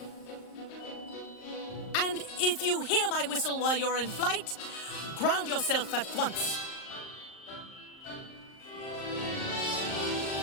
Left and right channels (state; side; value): late; right; 38 ms